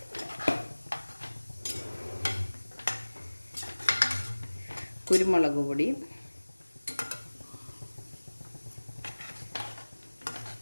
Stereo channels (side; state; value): both; inverted; correlation -1.00